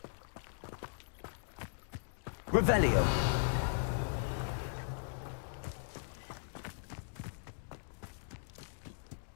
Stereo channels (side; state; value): right; silent; digital silence